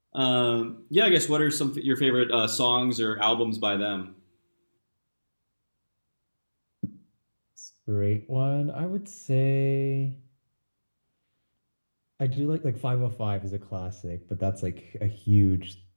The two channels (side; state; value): both; inverted; correlation -1.00